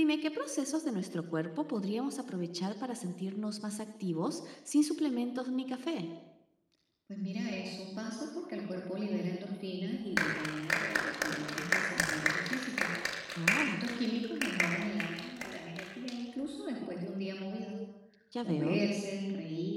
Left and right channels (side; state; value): both; identical; correlation 1.00